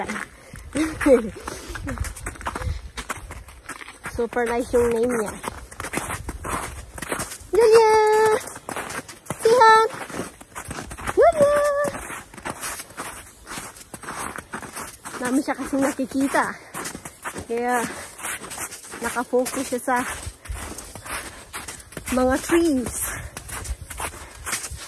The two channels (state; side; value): identical; both; correlation 1.00